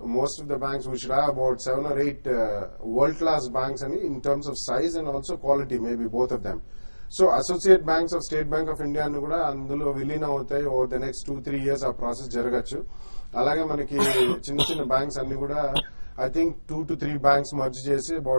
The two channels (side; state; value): both; inverted; correlation -1.00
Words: Most of the banks we should have about 7 or 8 world class banks అని in terms of size and also quality, maybe both of them. So associate banks of State Bank of India ను కూడా అందులో విలీనం అవుతాయి. Over the next 2-3 years ఆ process జరగచ్చు. అలాగే మనకి చిన్న చిన్న బ్యాంక్స్ అన్ని కూడా I think 2 to 3 banks merge చేసి